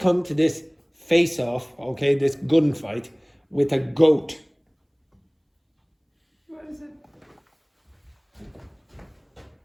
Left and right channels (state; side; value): identical; both; correlation 1.00